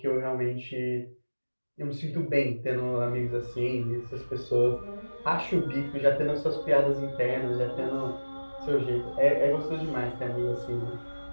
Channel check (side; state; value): both; inverted; correlation -1.00